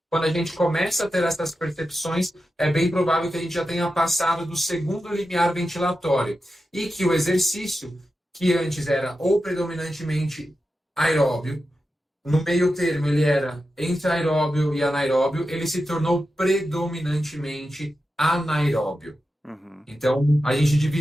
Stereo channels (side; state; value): both; normal; correlation 0.90